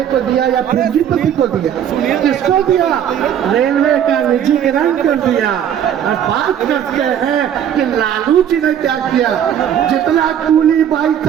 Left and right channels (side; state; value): left; quieter; 9.5 dB